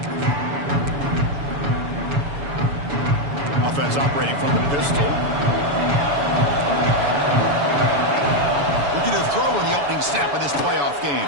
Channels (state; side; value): late; left; 7.0 ms